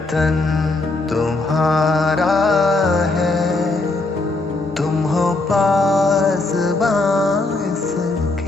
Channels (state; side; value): quieter; right; 3.1 dB